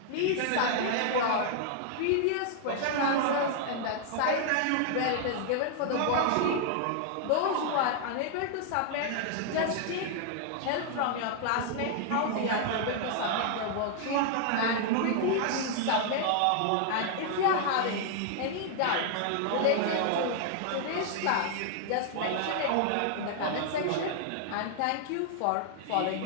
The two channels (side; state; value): both; different; correlation 0.00